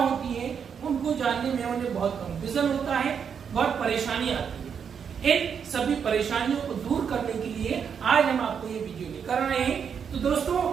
है। उनको जानने में उन्हें बहुत कंफ्यूजन होता है, बहुत परेशानी आती है। इन सभी परेशानियों को दूर करने के लिए आज हम आपको ये वीडियो लेकर आए हैं। तो दोस्तों,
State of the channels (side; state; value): left; quieter; 7.1 dB